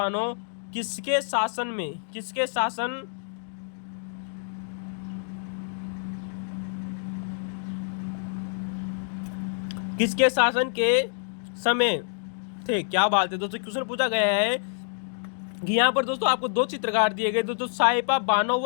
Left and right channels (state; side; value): silent; right; digital silence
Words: किसके शासन में, किसके शासन के समय थे। क्या बात है दोस्तों, क्वेश्चन पूछा गया है कि यहाँ पर दोस्तों आपको 2 चित्रकार दिए गए दोस्तों, साइपा बानो